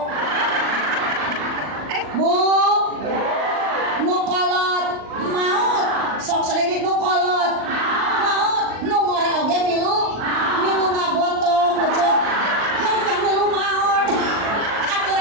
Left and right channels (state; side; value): late; left; 39 ms